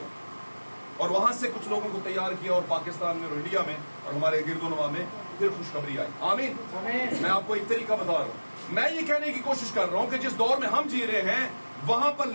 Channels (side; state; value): both; inverted; correlation -1.00